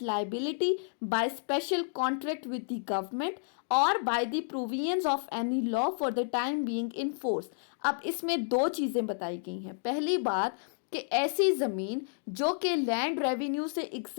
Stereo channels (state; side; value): silent; right; digital silence